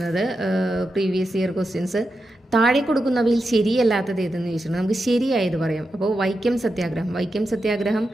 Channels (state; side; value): normal; both; correlation 0.88